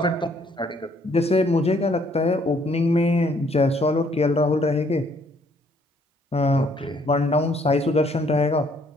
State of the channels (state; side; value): normal; both; correlation 0.65